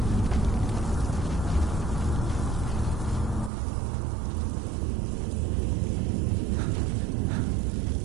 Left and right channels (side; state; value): left; drops out; at 3.5 s